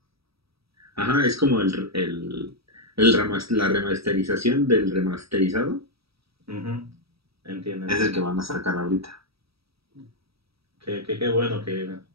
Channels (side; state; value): left; late; 0.76 ms